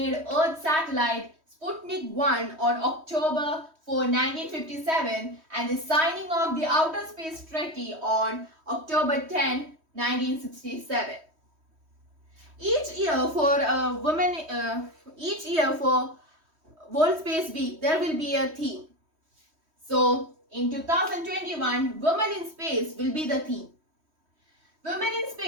Earth satellite Sputnik 1 on October 4, 1957 and the signing of the Outer Space Treaty on October 10, 1967. Each year for World Space Week, there will be a theme. So, in 2021, Women in Space will be the theme. Women in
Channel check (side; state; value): left; late; 3.1 ms